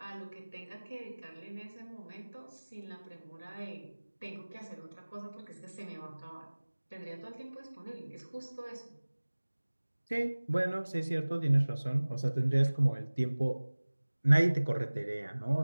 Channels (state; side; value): inverted; both; correlation -1.00